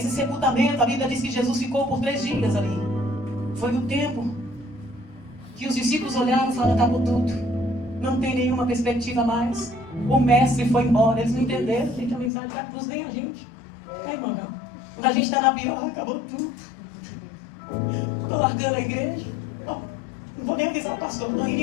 sepultamento, a Bíblia diz que Jesus ficou por 3 dias ali. Foi o tempo que os discípulos olharam e falaram, acabou tudo. Não tem nenhuma perspectiva mais. O mestre foi embora. Eles não entenderam, gente, a mensagem da cruz, nem a gente. É, irmão, não. Quando a gente está na pior, acabou tudo. Estou largando a igreja. Oh, não vou nem avisar o pastor, estou indo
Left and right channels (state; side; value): drops out; right; at 12.3 s